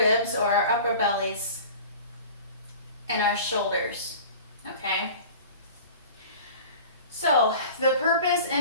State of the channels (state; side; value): inverted; both; correlation -0.41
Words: or our upper bellies, and our shoulders, okay? So the purpose